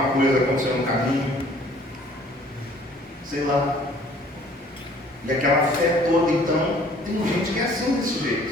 coisa aconteceu no caminho, sei lá. E aquela fé toda, então, tem gente que é assim desse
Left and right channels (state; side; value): normal; both; correlation 0.55